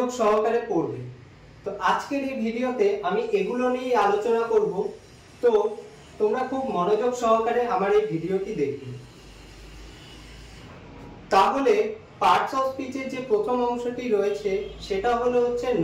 সহকারে পড়বে। তো আজকের এই ভিডিওতে আমি এগুলো নিয়ে আলোচনা করব। তো তোমরা খুব মনোযোগ সহকারে আমার এই ভিডিওটি দেখবে। তাহলে পার্টস অফ স্পিচের যে প্রথম অংশটি রয়েছে সেটা হলো হচ্ছে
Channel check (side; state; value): both; identical; correlation 1.00